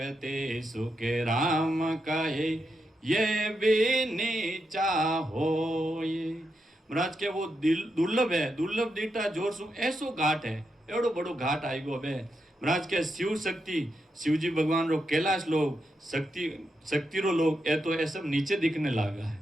सुख राम कहे ये भी नीचा हो। ये महाराज के वो दुर्लभ है, दुर्लभ देता जोर सू ऐसो घाट है, एवढो बड़ो घाट आई गो बे। महाराज के शिव शक्ति, शिवजी भगवान रो कैलाश लोग, शक्ति रो लोग ए तो ये सब नीचे दिखने लगा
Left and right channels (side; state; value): both; normal; correlation 0.84